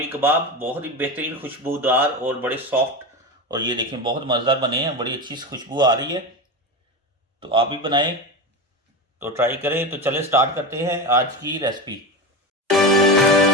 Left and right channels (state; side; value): normal; both; correlation 0.21